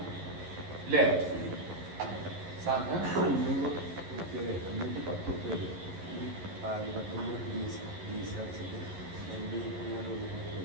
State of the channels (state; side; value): late; left; 11 ms